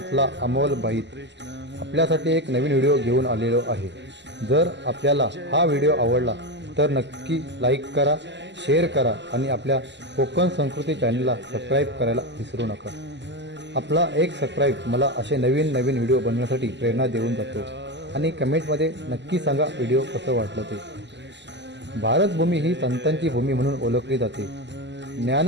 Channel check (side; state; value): left; late; 0.51 ms